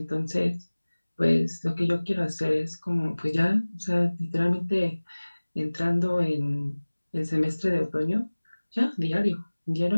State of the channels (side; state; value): both; inverted; correlation -1.00